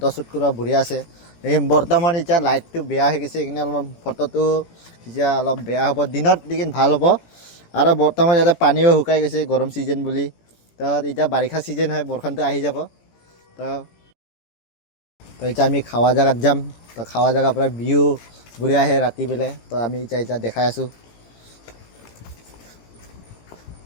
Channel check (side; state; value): right; late; 18 ms